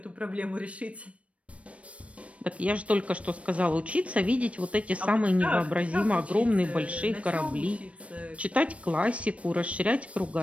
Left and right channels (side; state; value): left; late; 0.063 ms